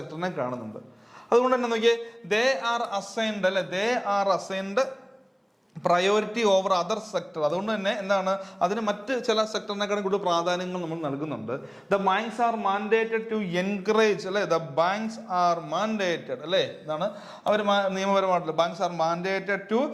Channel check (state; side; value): identical; both; correlation 1.00